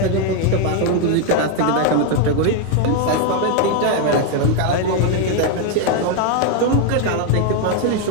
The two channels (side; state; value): both; different; correlation 0.01